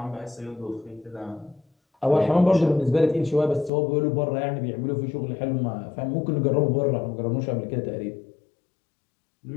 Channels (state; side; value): drops out; right; at 3.7 s